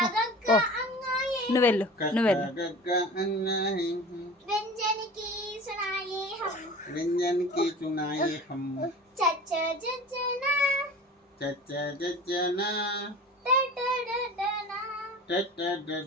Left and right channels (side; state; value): both; normal; correlation 0.38